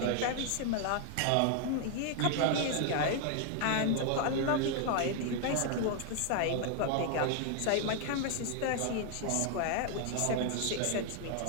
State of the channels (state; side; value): different; both; correlation 0.00